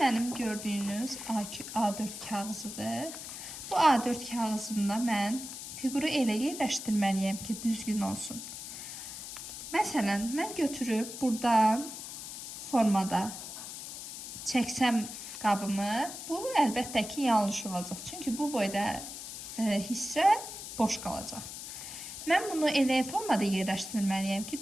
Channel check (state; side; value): noise; left; hiss, 9 dB below the sound